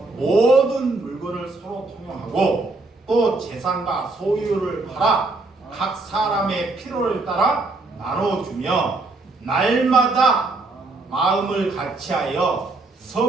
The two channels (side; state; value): left; quieter; 3.3 dB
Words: 모든 물건을 서로 통용하고 또 재산과 소유를 팔아 각 사람의 필요를 따라 나눠주며 날마다 마음을 같이하여